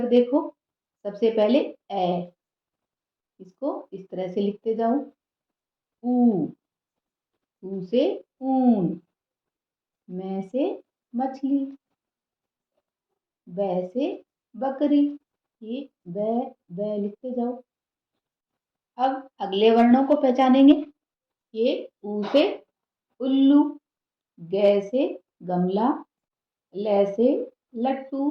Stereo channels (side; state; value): both; identical; correlation 1.00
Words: देखो। सबसे पहले ए, इसको इस तरह से लिखते जाओ। ऊ, ऊ से ऊन, मैं से मछली, ब से बकरी, ये ब लिखते जाओ। अब अगले वर्णों को पहचानेंगे। ये ऊ से उल्लू, ग से गमला, ल से लट्टू